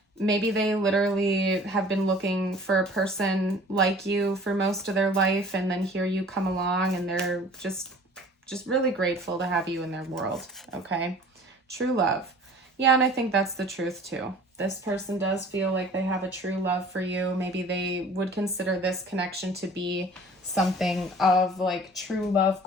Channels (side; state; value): both; normal; correlation 0.47